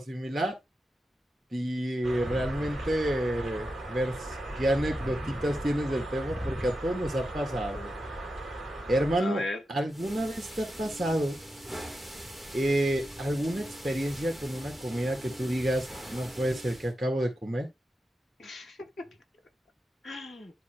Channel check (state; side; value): normal; both; correlation 0.89